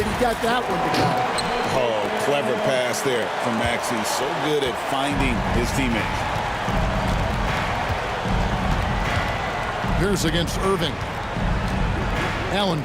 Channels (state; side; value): identical; both; correlation 1.00